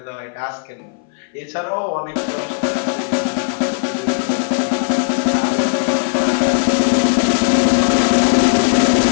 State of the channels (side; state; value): right; silent; 61 dB below the other